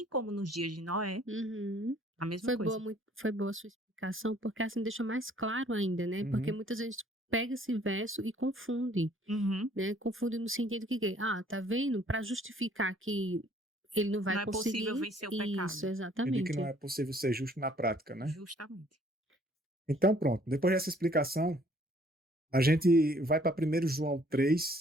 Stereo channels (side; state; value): both; normal; correlation 0.60